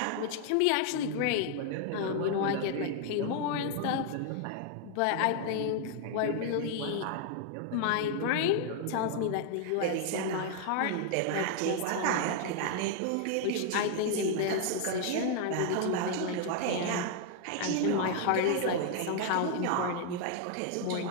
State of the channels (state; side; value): different; both; correlation 0.00